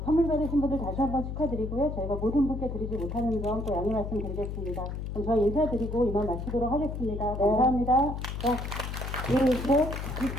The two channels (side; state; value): left; noise; hum, 5 dB below the sound